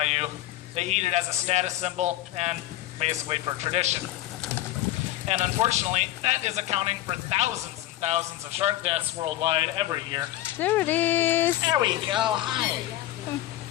They eat it as a status symbol and basically for tradition. And unfortunately, that is accounting for thousands and thousands of shark deaths worldwide every year. There it is. There we go. Hi.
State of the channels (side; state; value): right; quieter; 15.0 dB